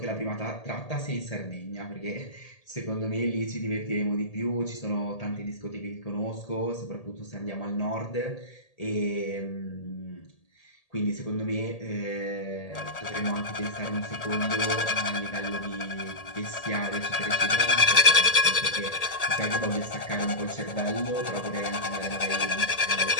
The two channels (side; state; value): right; late; 1.8 ms